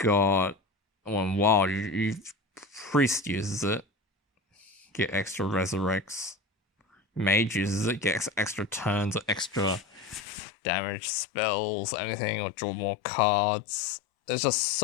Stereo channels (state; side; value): drops out; right; at 10.2 s